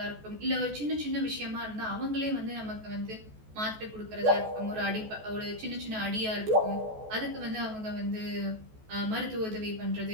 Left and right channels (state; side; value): late; left; 14 ms